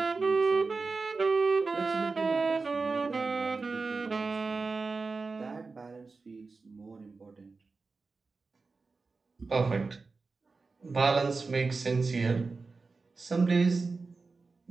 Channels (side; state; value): left; quieter; 4.1 dB